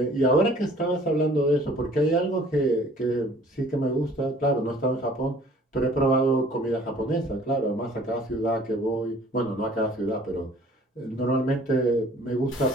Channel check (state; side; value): normal; both; correlation 0.53